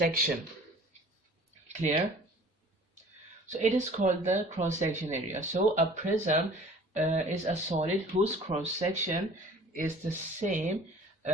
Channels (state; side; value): normal; both; correlation 0.48